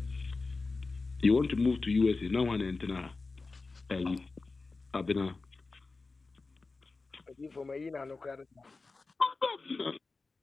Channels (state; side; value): quieter; right; 3.8 dB